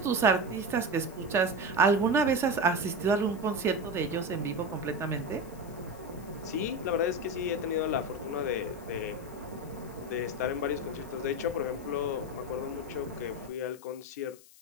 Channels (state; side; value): noise; left; hiss, 23 dB below the sound